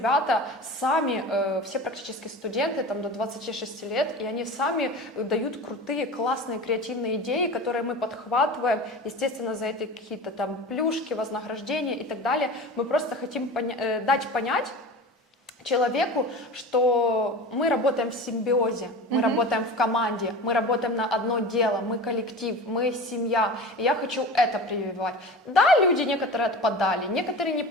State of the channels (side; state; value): both; normal; correlation 0.33